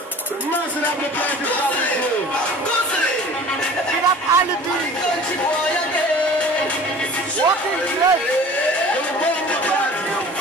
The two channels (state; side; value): normal; both; correlation 0.44